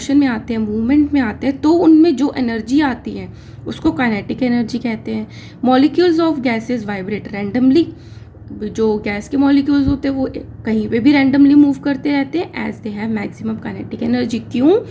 में आते हैं, मूवमेंट में आते हैं, तो उनमें जो एनर्जी आती है उसको काइनेटिक एनर्जी कहते हैं। Molecules of gases vibrate randomly, जो गैस के मॉलिक्यूल्स होते हैं वो कहीं पे भी रैंडमली मूव करते रहते हैं as they have maximum kinetic energy. क्यों?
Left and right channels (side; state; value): both; identical; correlation 1.00